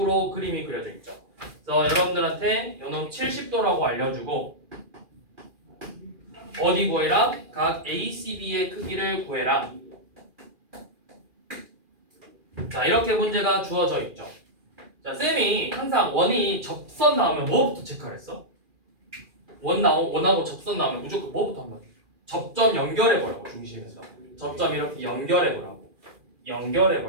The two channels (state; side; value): late; left; 2.4 ms